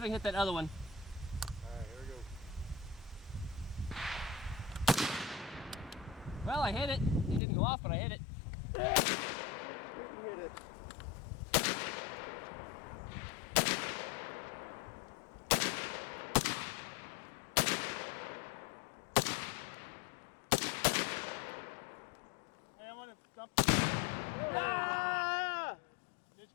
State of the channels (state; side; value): drops out; right; at 7.4 s